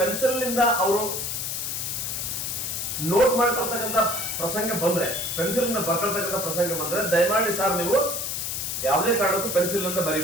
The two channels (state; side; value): noise; left; hiss, 3 dB below the sound